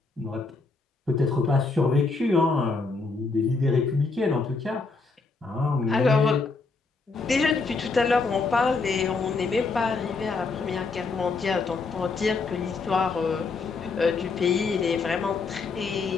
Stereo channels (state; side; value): quieter; right; 4.1 dB